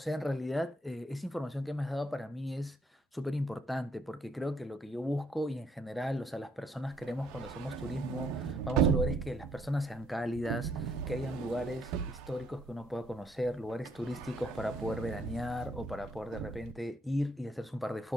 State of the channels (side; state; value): both; normal; correlation 0.69